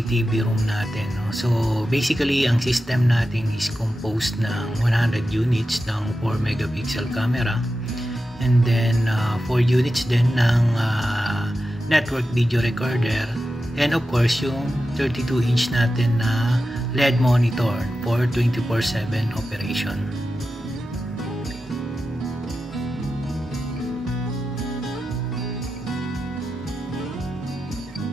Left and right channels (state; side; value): normal; both; correlation 0.91